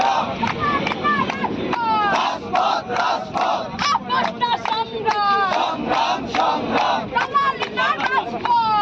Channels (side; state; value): both; identical; correlation 1.00